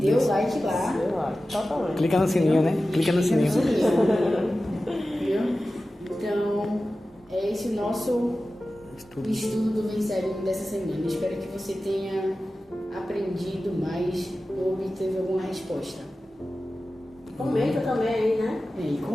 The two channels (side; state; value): both; normal; correlation 0.95